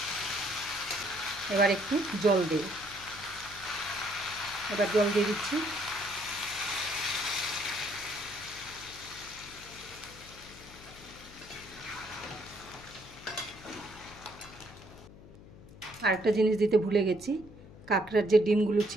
এবার একটু জল দেব। এবার জল দিয়ে দিচ্ছি। আরেকটা জিনিস দিতে ভুলে গেছি, কাঁকড়ার যে ডিমগুলো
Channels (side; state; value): left; noise; hum, 18 dB below the sound